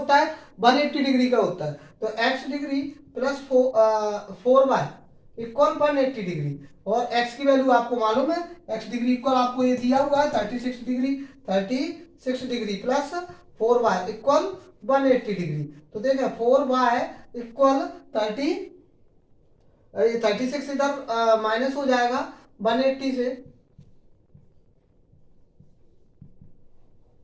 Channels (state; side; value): identical; both; correlation 1.00